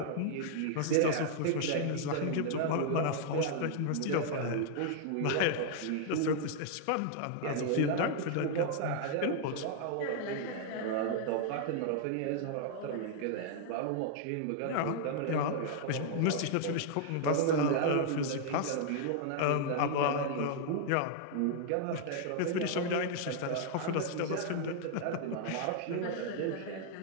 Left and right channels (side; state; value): both; different; correlation -0.01